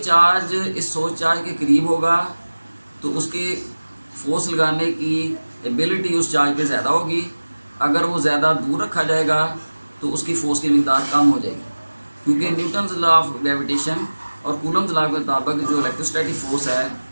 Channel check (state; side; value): inverted; both; correlation -1.00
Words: चार्ज इस सोर्स चार्ज के करीब होगा तो उसके फोर्स लगाने की एबिलिटी उस चार्ज पे ज़्यादा होगी। अगर वो ज़्यादा दूर रखा जाएगा तो उसकी फोर्स की मिकदार कम हो जाएगी, क्योंकि न्यूटन्स लॉ ऑफ ग्रेविटेशन और कूलम्स लॉ के मुताबिक जो इलेक्ट्रोस्टैटिक फोर्स है